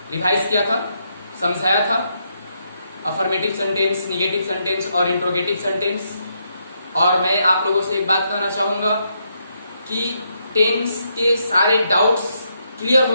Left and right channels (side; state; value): both; inverted; correlation -0.78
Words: रिवाइज किया था, समझाया था। अफर्मेटिव सेंटेंस, निगेटिव सेंटेंस और इंट्रोगेटिव सेंटेंस। और मैं आप लोगों से एक बात कहना चाहूंगा कि टेंस के सारे डाउट्स क्लियर हो